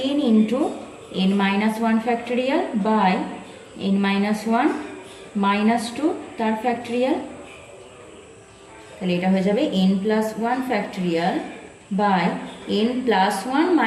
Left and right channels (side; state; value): both; identical; correlation 1.00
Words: into n-1 factorial by n-1 - 2 তার ফ্যাক্টোরিয়াল। তাহলে এটা হয়ে যাবে n+1 ফ্যাক্টোরিয়াল বাই